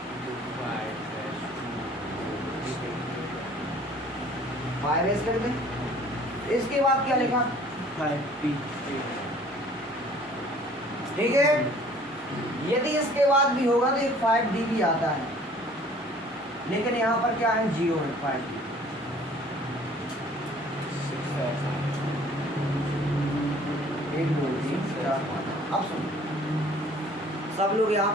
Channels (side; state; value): both; normal; correlation 0.53